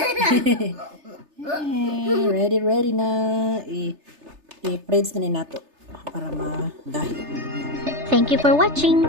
ready na. I-preds na ni nato para magahi. Thank you for watching.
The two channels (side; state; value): left; late; 3.3 ms